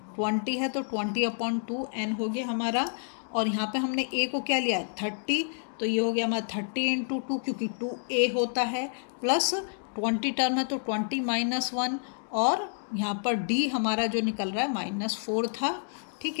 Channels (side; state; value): right; silent; digital silence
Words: 20 है तो 20/2 n हो गया हमारा, और यहाँ पे हमने a को क्या लिया है 30, तो ये हो गया हमारा 30 × 2, क्योंकि 2a होता है, प्लस 20 टर्म है तो 20 - 1, और यहाँ पर d हमारा जो निकल रहा है -4 था। ठीक